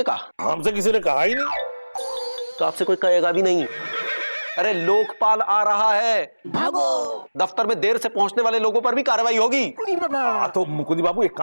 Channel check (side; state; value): both; inverted; correlation -1.00